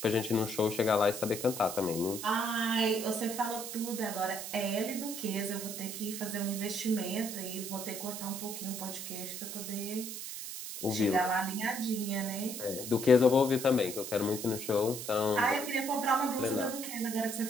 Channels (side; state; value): right; noise; hiss, 7 dB below the sound